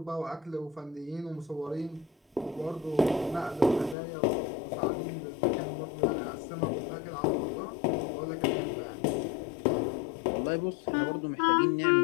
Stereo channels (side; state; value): right; drops out; at 4.0 s